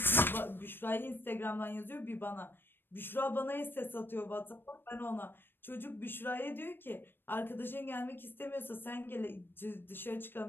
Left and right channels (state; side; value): late; right; 0.098 ms